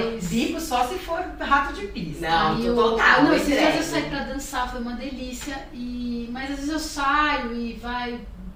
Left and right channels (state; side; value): identical; both; correlation 1.00